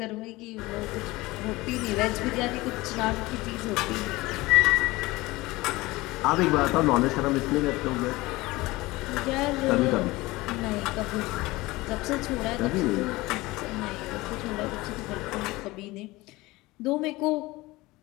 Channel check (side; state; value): right; quieter; 20.6 dB